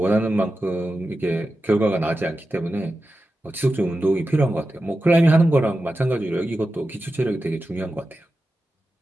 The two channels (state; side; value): normal; both; correlation 0.92